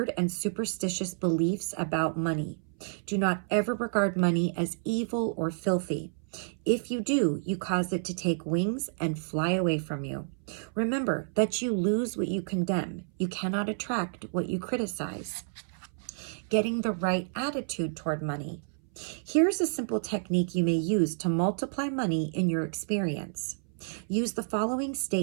and superstitious beliefs about money. Do not ever regard money as evil or filthy. If you do, you cause it to take wings and fly away from you. Remember that you lose what you condemn. You cannot attract what you criticize. Getting the right attitude toward money. Here's a simple technique you may use to multiply money in your experience. Use the following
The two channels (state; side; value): silent; left; 58 dB below the other